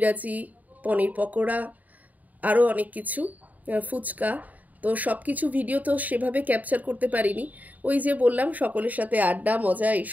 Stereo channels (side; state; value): left; late; 0.077 ms